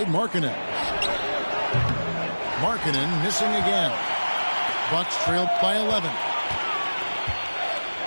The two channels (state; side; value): inverted; both; correlation -1.00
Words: Markkanen. Markkanen missing again. Bucks trailed by 11.